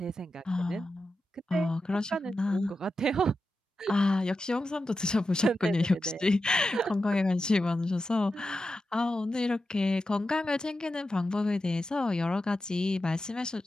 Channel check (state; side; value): normal; both; correlation 0.91